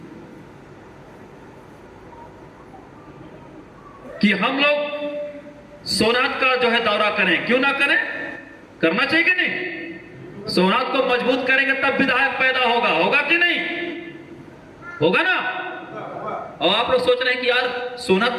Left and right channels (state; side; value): identical; both; correlation 1.00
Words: कि हम लोग सोनात का जो है दौरा करें। क्यों ना करें, करना चाहिए कि नहीं? सोनात को मजबूत करेंगे तब विधायक पैदा होगा कि नहीं? होगा ना? और आप लोग सोच रहे हैं कि यार सोनात